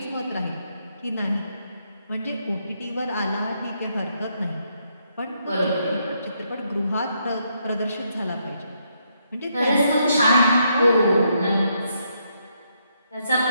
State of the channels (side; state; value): both; inverted; correlation -0.76